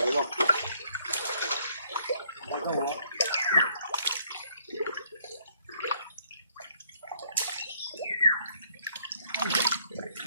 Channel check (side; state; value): both; inverted; correlation -0.66